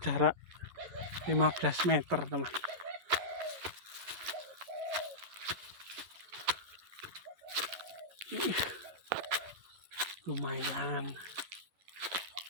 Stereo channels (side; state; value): left; late; 11 ms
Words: 15 meter teman. Lumayan.